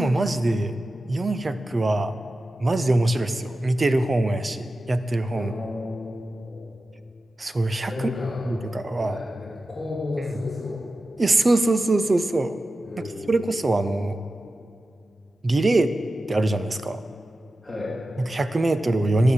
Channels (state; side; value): normal; both; correlation 0.93